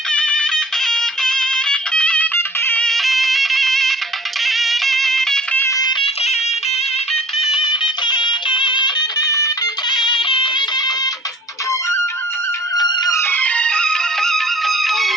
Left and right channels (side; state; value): both; normal; correlation 0.51